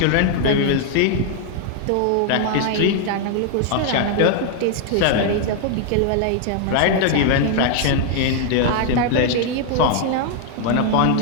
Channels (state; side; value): different; both; correlation 0.00